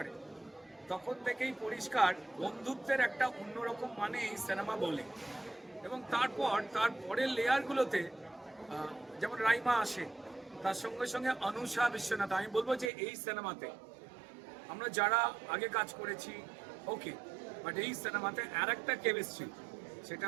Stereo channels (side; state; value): left; drops out; at 12.9 s